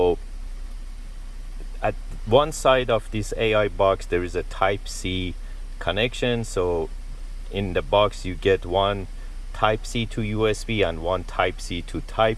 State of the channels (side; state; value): both; identical; correlation 1.00